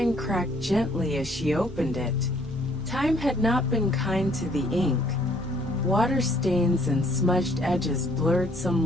cracked gently as she opened it. Time had not been kind to the ink. Water stains and smudged edges blurred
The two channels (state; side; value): normal; both; correlation 0.63